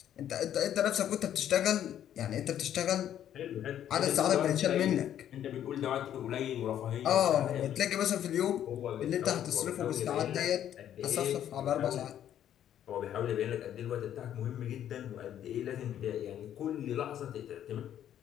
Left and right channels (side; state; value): right; quieter; 10.6 dB